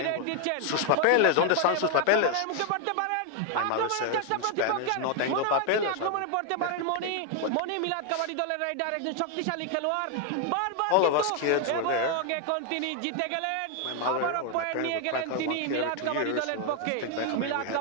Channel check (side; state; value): both; different; correlation 0.00